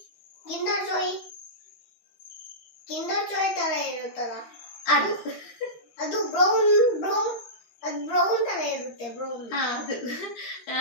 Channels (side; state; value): right; late; 13 ms